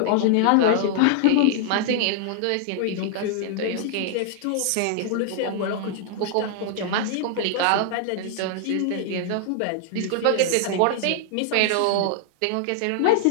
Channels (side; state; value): both; different; correlation 0.00